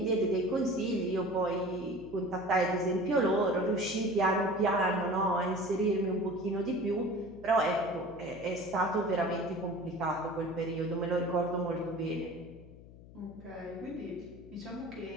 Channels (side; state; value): left; noise; hum, 19 dB below the sound